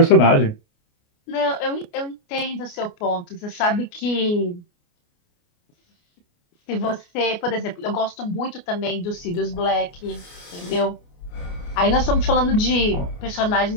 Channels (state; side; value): late; right; 29 ms